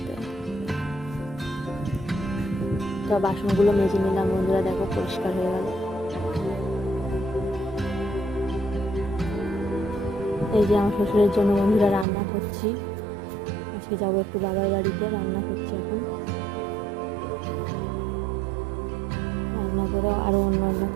তো বাসনগুলো মেজে নিলাম। বন্ধুরা দেখো, পরিষ্কার হয়ে গেল। এই যে আমার শ্বশুরের জন্য বন্ধুরা রান্না করছি। আজকে যাবো একটু বাবার বাড়িতে, রান্না করছি এখন। রান্না করে আরও অন্য অন্য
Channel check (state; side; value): drops out; left; at 12.1 s